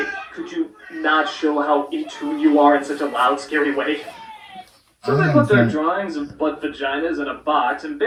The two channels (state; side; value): identical; both; correlation 1.00